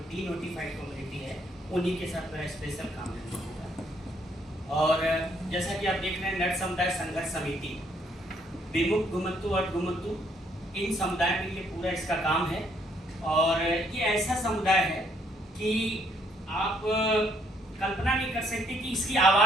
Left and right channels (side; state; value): both; normal; correlation 0.69